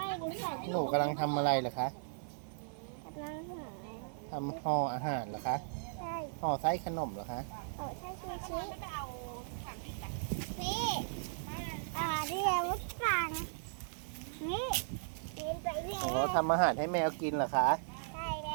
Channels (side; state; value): left; silent; 53 dB below the other